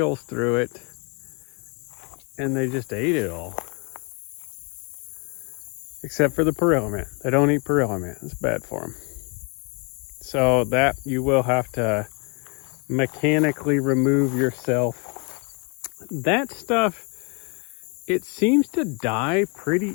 through it, and they just ate it all. Except for the perilla mint. They don't eat perilla mint. It's bad for them. So that you will have to mechanically remove yourself. That stuff, it seems to die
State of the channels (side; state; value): right; quieter; 34.2 dB